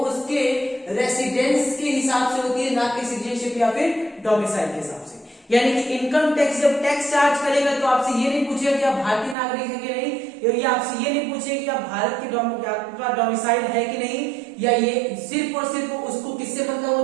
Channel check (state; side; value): drops out; left; at 9.3 s